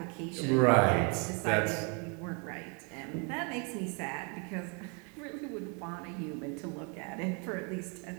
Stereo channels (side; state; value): left; quieter; 35.4 dB